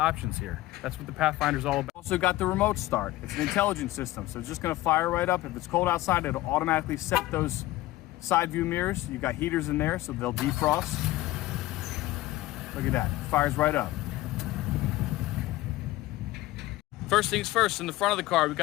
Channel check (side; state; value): right; quieter; 17.2 dB